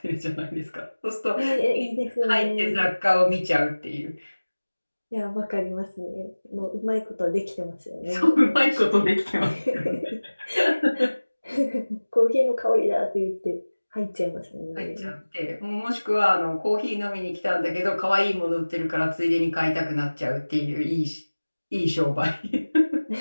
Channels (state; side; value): inverted; both; correlation -1.00